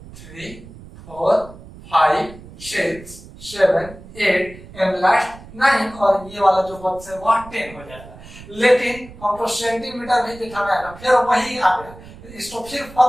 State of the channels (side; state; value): right; noise; rumble, 18 dB below the sound